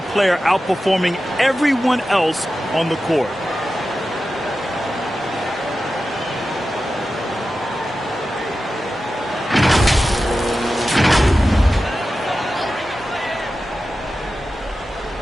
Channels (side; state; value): both; normal; correlation 0.93